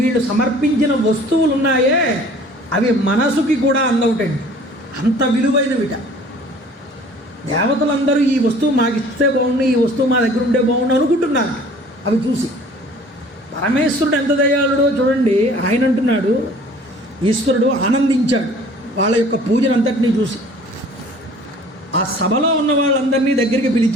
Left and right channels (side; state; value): both; normal; correlation 0.50